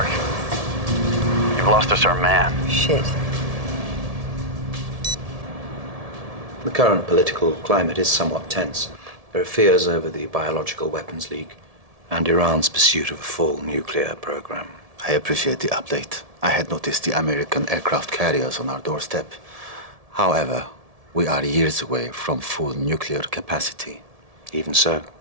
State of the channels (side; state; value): left; late; 1.7 ms